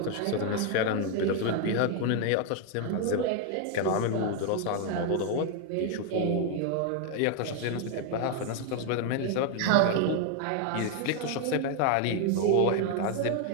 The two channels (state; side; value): different; both; correlation 0.01